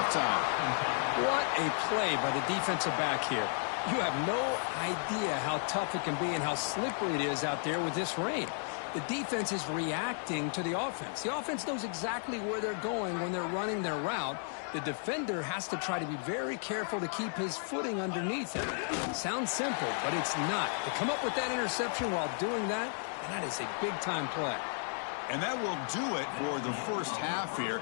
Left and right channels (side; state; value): right; silent; 55 dB below the other